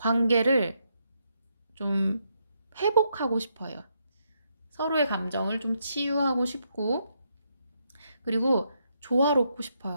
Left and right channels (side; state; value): both; inverted; correlation -0.78